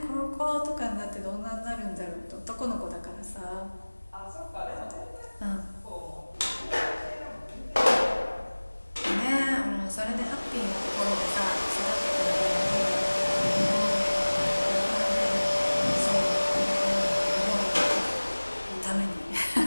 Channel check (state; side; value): inverted; both; correlation -1.00